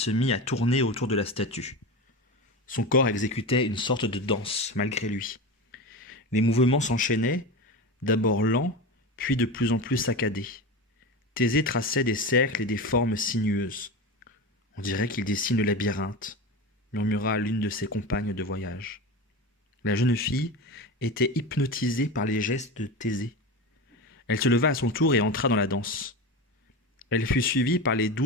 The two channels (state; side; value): normal; both; correlation 0.24